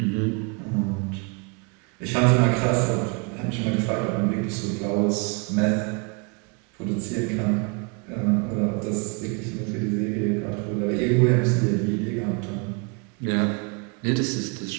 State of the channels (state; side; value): quieter; left; 33.7 dB